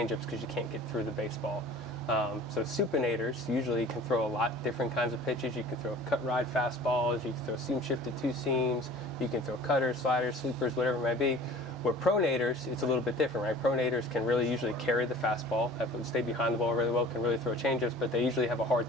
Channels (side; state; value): both; normal; correlation 0.44